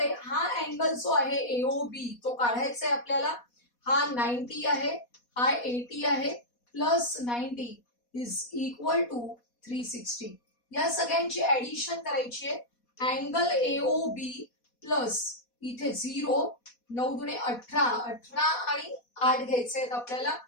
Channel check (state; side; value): late; right; 4.2 ms